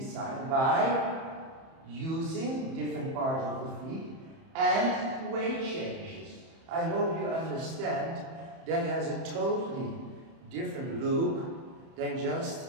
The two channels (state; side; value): late; left; 31 ms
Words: by using different parts of the feet and weight changes. I hope you understand that has a totally different look than just